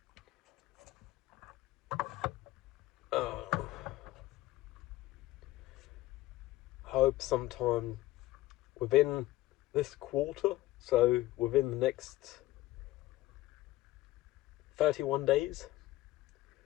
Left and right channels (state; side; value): quieter; right; 16.8 dB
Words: Hope sometime within this quarter, so within the next 31 days,